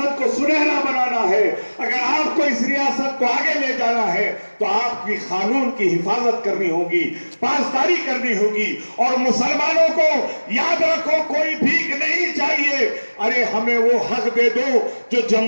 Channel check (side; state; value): both; inverted; correlation -1.00